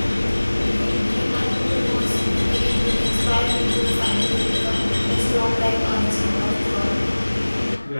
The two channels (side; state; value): both; inverted; correlation -1.00